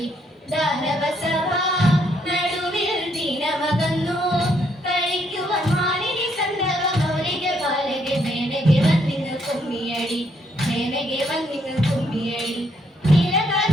ദാനവസഭ നടുവിൽ ദിനമകന്നു കളിക്കുവാൻ മാലിനി സന്ദവ മൗലിക ബാലക മേനകെ വന്നിന്നു കുമ്മിയടി മേനകെ വന്നിന്നു കുമ്മിയടി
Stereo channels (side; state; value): both; normal; correlation 0.72